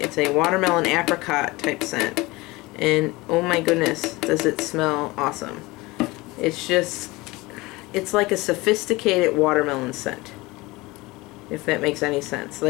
It's a watermelon apricot type scent. And oh my goodness, does it smell awesome. It's like a sophisticated watermelon scent, if that makes any sense.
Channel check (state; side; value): quieter; right; 21.8 dB